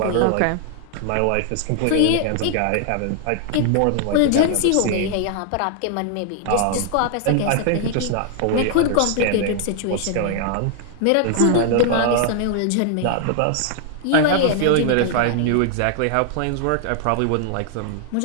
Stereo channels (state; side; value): different; both; correlation 0.00